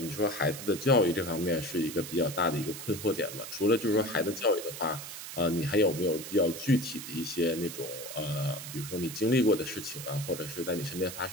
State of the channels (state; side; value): noise; right; hiss, 10 dB below the sound